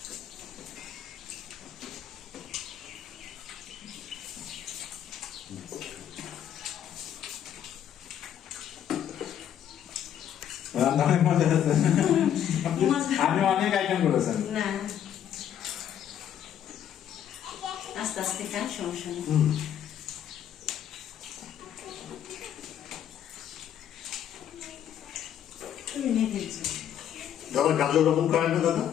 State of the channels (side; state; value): right; quieter; 9.9 dB